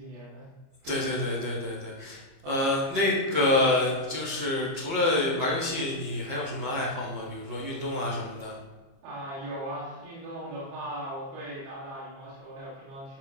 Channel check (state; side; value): late; left; 30 ms